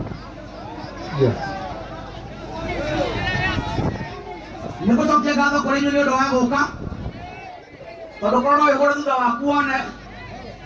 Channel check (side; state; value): both; identical; correlation 1.00